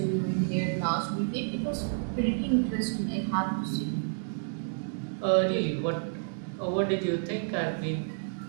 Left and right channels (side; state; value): left; silent; digital silence